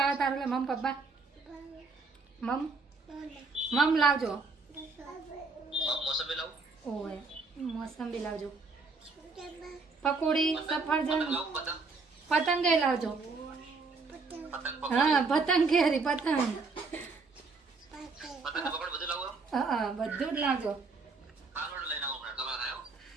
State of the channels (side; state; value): left; quieter; 4.2 dB